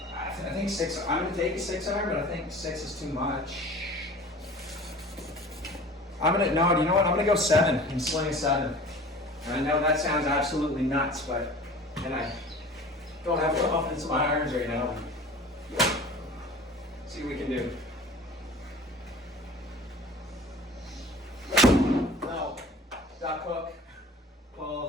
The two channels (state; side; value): normal; both; correlation 0.42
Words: I think 6, I'm gonna take a 6-iron, but I think 6 is too much. No, you know what? I'm gonna go 7 and sling 7. And I know that sounds absolutely nuts, but, and I don't have confidence in my irons right now. See what we can do. No, duck hook,